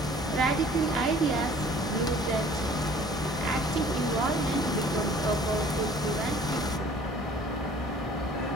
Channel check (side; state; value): both; normal; correlation 0.52